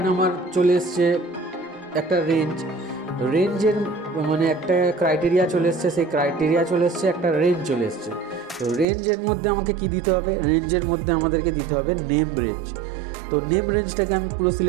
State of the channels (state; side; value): drops out; left; at 8.8 s